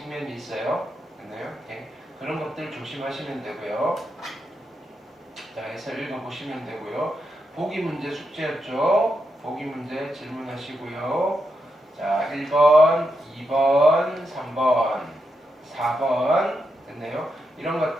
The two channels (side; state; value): both; normal; correlation 0.84